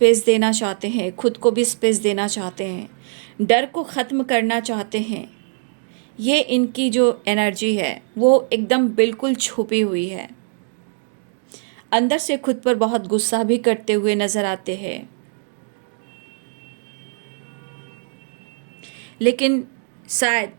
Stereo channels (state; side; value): silent; left; 65 dB below the other